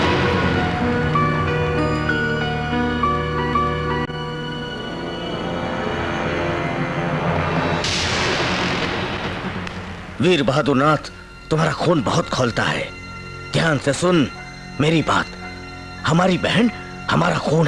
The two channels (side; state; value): both; identical; correlation 1.00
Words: वीर बहादुर नाथ, तुम्हारा खून बहुत खौलता है। ध्यान से सुन मेरी बात। हमारी बहन हमारा खून